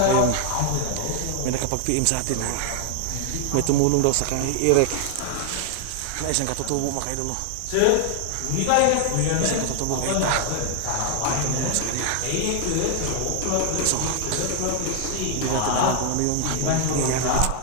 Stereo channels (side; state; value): both; different; correlation 0.00